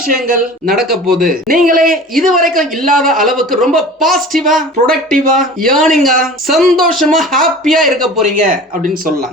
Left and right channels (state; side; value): normal; both; correlation 0.40